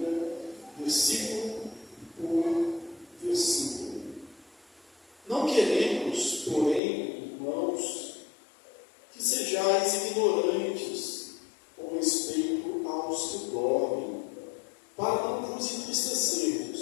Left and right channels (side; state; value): right; drops out; at 6.8 s